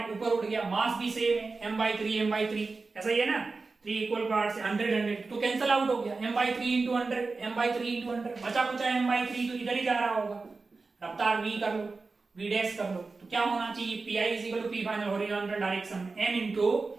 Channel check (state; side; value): quieter; left; 4.0 dB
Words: ऊपर उड़ गया, मास भी सेम है m/3 ऐसा ही है ना, 3 इक्वल पार्ट से 100 तो कैंसिल आउट हो गया, m/3 इंटू 100 बचा कुचा m/3 तो इधर ही जा रहा होगा। रफ्तार v कर लो, v डैश कर लो, तो क्या होना चाहिए pi is equal to p final horizontal direction m into